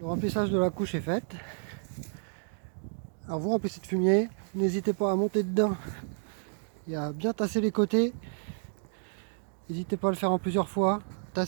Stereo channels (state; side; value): silent; left; digital silence